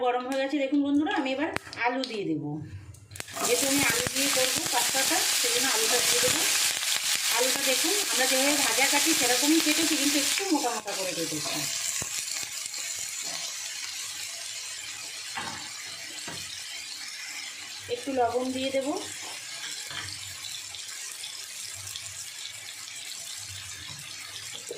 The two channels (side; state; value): both; identical; correlation 1.00